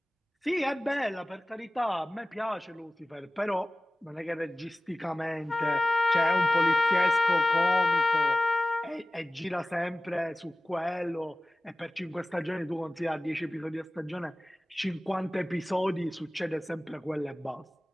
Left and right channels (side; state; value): both; normal; correlation 0.97